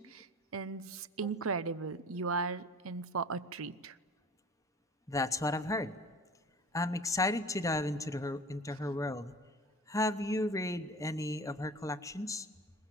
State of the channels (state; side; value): normal; both; correlation 0.41